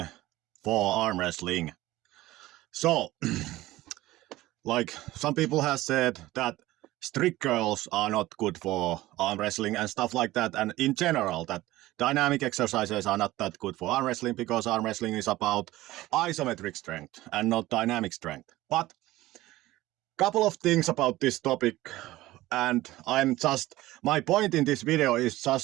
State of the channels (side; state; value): left; quieter; 17.2 dB